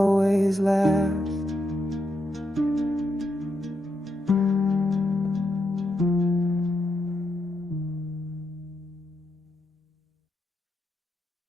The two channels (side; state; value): both; normal; correlation 0.82